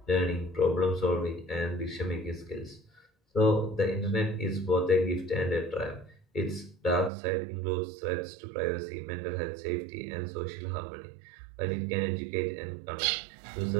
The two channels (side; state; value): left; drops out; at 7.1 s